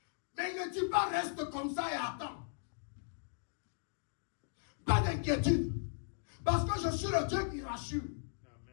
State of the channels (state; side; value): silent; right; digital silence